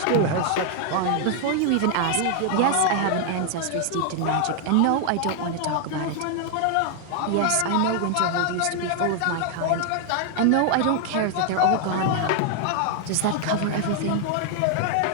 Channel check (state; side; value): different; both; correlation 0.00